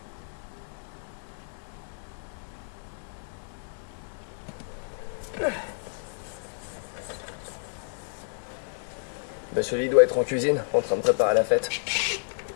Monsieur Lee doit être en cuisine, en train de préparer la fête.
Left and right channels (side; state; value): right; silent; 58 dB below the other